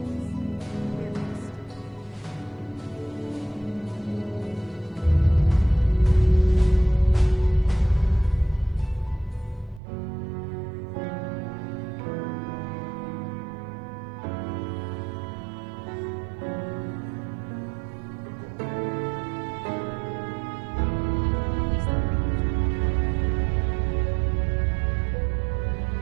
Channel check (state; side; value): drops out; left; at 9.8 s